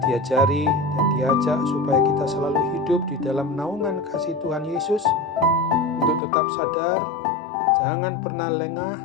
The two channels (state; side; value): drops out; right; at 6.2 s